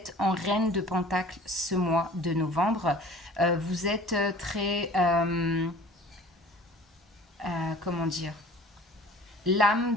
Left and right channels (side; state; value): both; normal; correlation 0.47